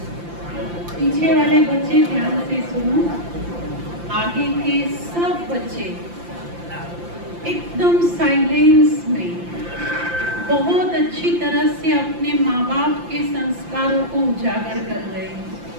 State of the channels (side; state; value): left; late; 5.8 ms